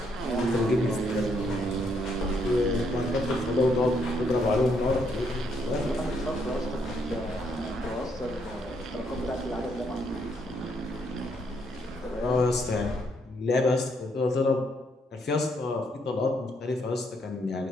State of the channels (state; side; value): normal; both; correlation 0.73